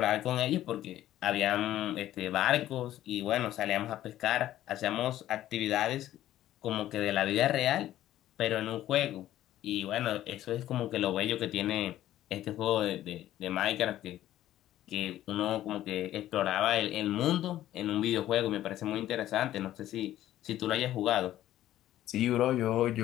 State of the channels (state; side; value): quieter; right; 13.3 dB